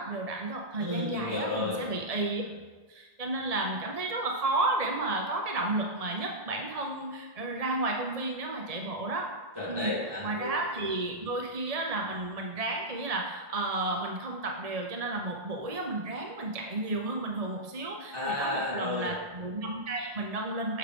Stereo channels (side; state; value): left; late; 1.7 ms